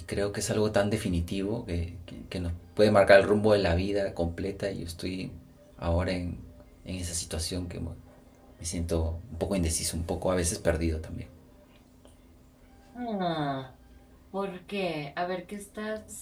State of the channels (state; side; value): identical; both; correlation 1.00